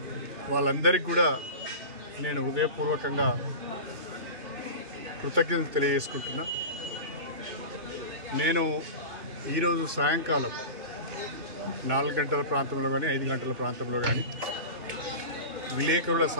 వాళ్ళందరికీ కూడా నేను హృదయపూర్వకంగా కృతజ్ఞతలు తెలియజేసుకుంటున్నా. నేను ఈరోజు సాయంకాలం 4 గంటల ప్రాంతంలో కానీ 5 గంటల ప్రాంతంలో కానీ విలేకరుల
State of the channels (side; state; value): left; late; 2.7 ms